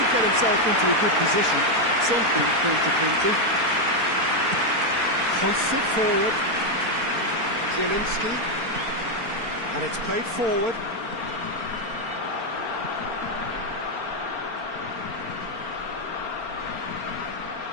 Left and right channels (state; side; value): late; left; 4.4 ms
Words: get himself into a good position, something for him to cling to. Hoists it forward. Zielinski. And it's played forward.